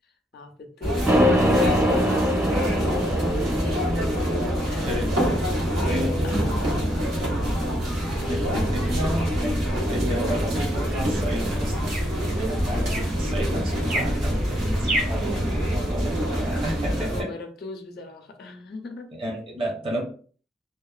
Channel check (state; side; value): normal; both; correlation 0.75